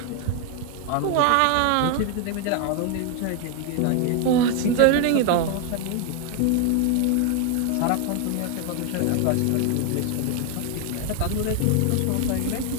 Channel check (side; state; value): both; different; correlation 0.01